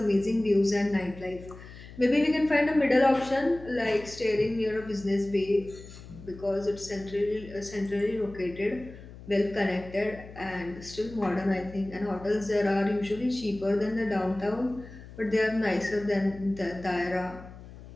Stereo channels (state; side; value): noise; left; hum, 17 dB below the sound